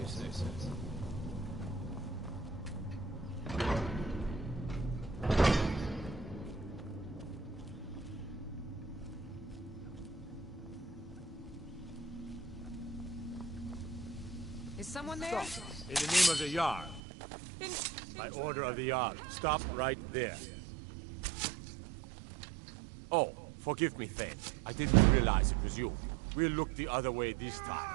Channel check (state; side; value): drops out; left; at 17.0 s